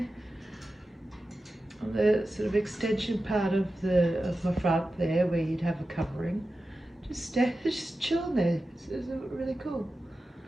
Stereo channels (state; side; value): normal; both; correlation 0.93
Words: on the sort of extension part of my front there, where you'd have a covering. Just chilling there. It's really cool.